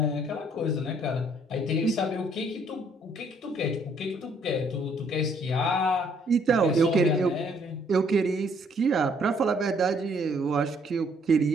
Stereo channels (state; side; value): normal; both; correlation 0.65